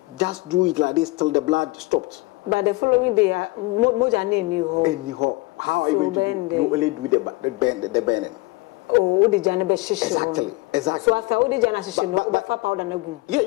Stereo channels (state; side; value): quieter; right; 23.4 dB